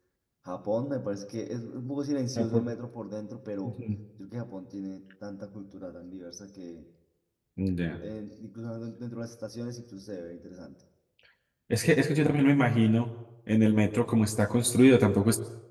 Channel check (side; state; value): both; identical; correlation 1.00